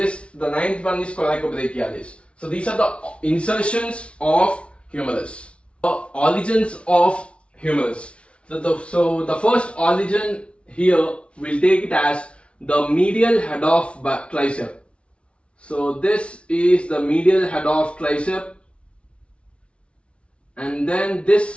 9th one is coracobrachialis. So these are the insertions of humerus. The origins of humerus. So the first origin here, we'll take it as the medial head of tricep. So this is the medial head of tricep, and then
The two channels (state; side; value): late; right; 0.060 ms